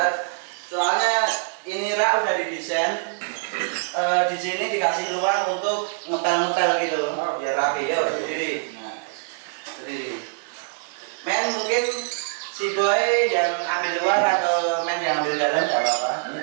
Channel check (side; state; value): left; silent; digital silence